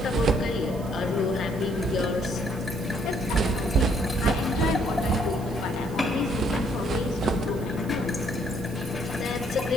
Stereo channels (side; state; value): right; noise; hiss, 22 dB below the sound